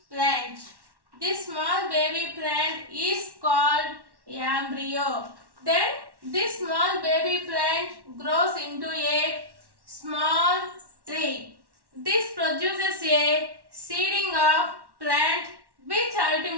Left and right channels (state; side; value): late; left; 1.1 ms